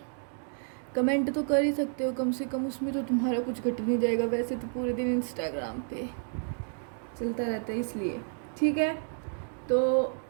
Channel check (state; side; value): silent; left; 58 dB below the other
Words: कमेंट तो कर ही सकते हो, कम से कम उसमें तो तुम्हारा कुछ घट नहीं जाएगा। वैसे तो पूरे दिन इंस्टाग्राम पे चलता रहता है, इसलिए ठीक है। तो